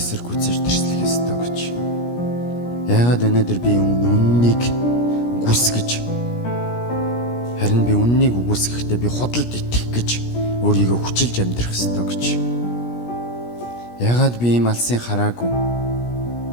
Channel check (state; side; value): late; right; 17 ms